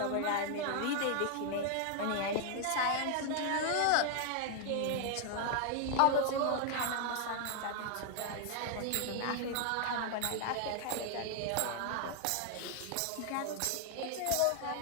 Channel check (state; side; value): different; both; correlation 0.00